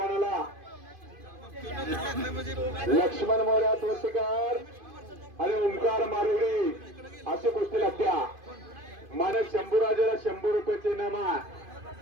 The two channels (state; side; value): late; left; 2.5 ms